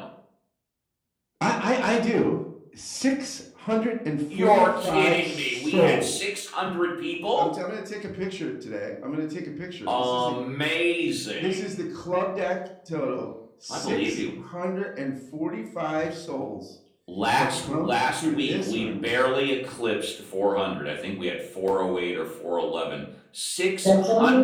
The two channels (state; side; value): identical; both; correlation 1.00